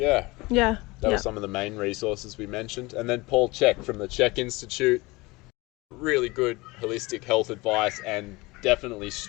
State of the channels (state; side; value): quieter; right; 23.0 dB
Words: That was some of the main resources we mentioned. And then Paul CHEK from the CHEK Institute. Really good holistic health advice and definitely